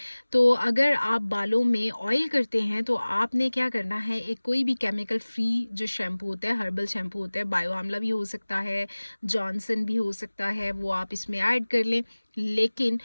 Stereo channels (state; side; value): inverted; both; correlation -1.00